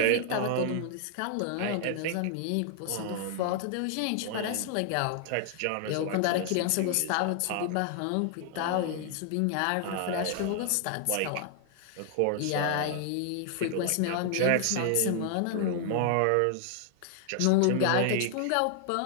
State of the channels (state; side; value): different; both; correlation 0.00